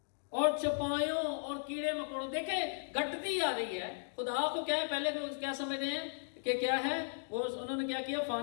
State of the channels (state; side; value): silent; right; digital silence